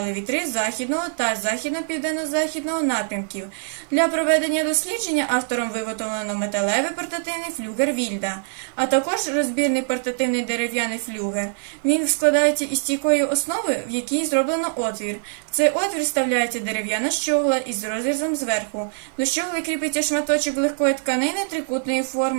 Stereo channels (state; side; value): silent; left; digital silence